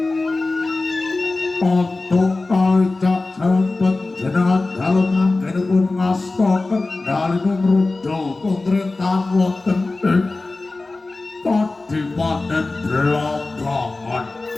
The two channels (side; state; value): right; quieter; 3.3 dB